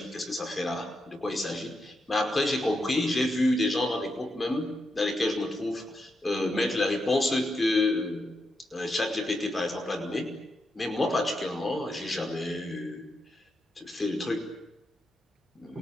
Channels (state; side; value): normal; both; correlation 0.84